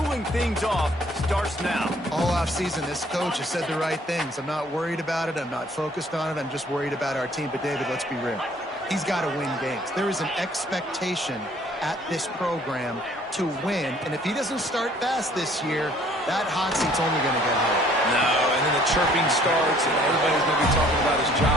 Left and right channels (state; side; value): normal; both; correlation 0.58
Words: things off starts now. All offseason, this coach has said the right things. I'm not worried about it. I'm not focused on it. I'm just worried about our team. But, David, let's be real. He's got to win games. There is an expectation at this program to win. And if he doesn't start fast this year, that hot seat's only going to get higher. No, and then the chirping starts, and everybody's going to be talking about his